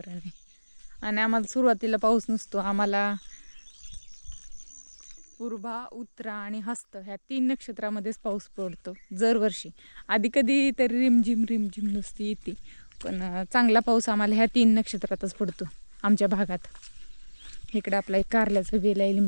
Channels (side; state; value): both; inverted; correlation -1.00